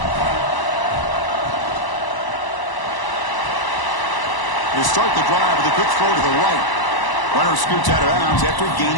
They start the drive with a quick throw to the right. Runner scoots out of bounds after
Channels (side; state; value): right; late; 1.0 ms